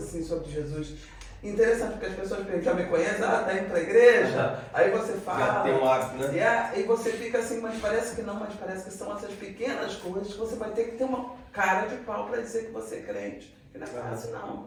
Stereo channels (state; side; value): identical; both; correlation 1.00